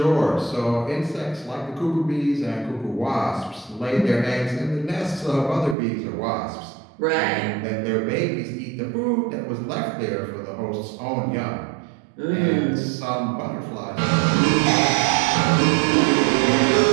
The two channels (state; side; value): drops out; left; at 5.8 s